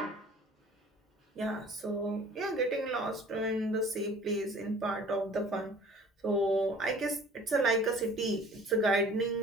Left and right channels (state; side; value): normal; both; correlation 0.49